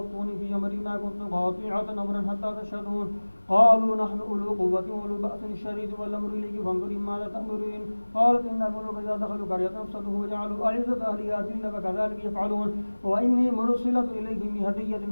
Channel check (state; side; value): inverted; both; correlation -1.00